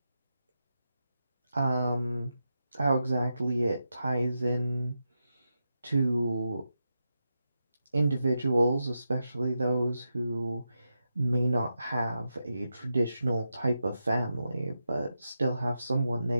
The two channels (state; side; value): inverted; both; correlation -0.88